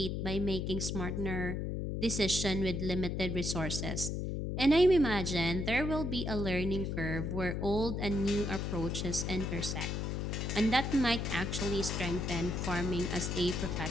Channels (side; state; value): left; noise; hum, 2 dB below the sound